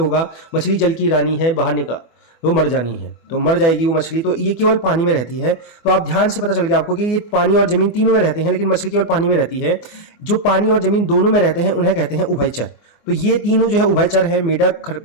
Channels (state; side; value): late; right; 24 ms